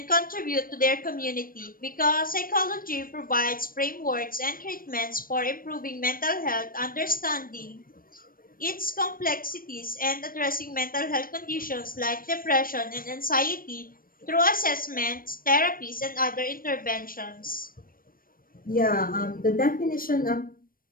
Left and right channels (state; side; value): late; right; 0.41 ms